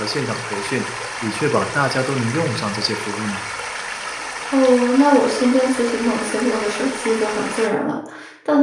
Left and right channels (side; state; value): both; identical; correlation 1.00